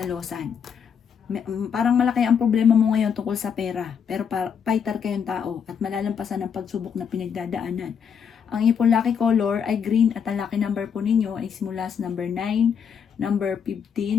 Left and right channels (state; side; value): quieter; right; 7.2 dB